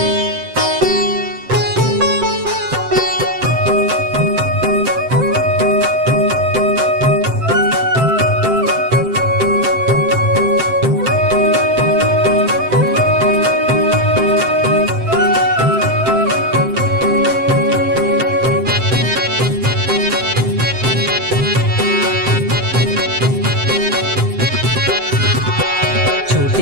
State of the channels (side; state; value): left; late; 7.7 ms